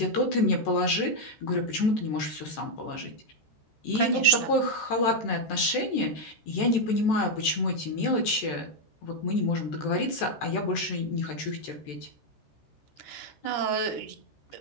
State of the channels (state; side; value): late; right; 14 ms